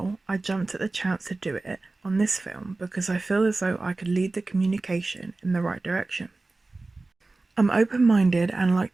I jumped at the chance to do it on this film because I feel as though I could lead the communication in the right direction. I'm open-minded and like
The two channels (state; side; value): quieter; left; 3.3 dB